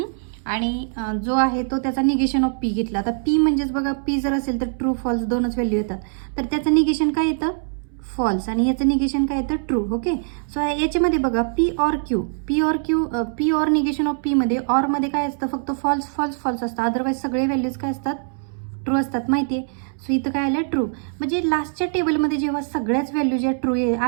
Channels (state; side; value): silent; left; 64 dB below the other